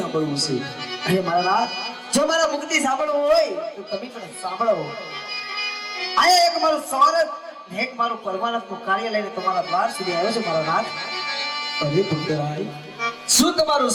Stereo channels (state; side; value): identical; both; correlation 1.00